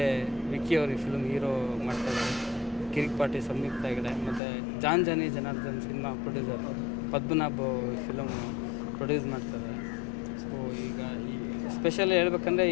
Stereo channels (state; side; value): drops out; right; at 4.4 s